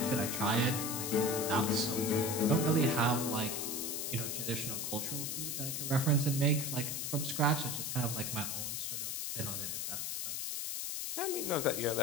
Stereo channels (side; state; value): left; noise; hiss, 2 dB below the sound